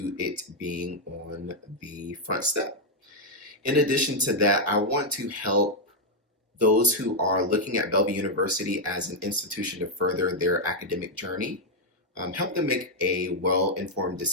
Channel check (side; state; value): both; normal; correlation -0.01